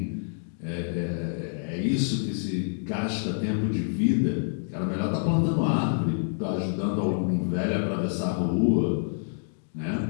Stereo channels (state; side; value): silent; right; digital silence